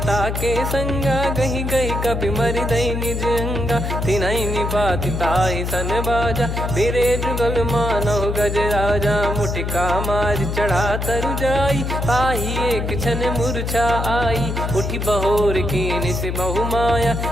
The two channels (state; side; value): noise; left; hum, 2 dB below the sound